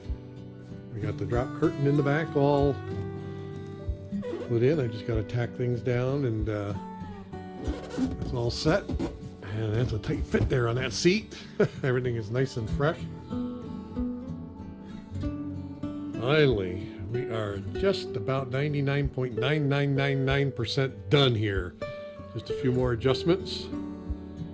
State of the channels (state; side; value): identical; both; correlation 1.00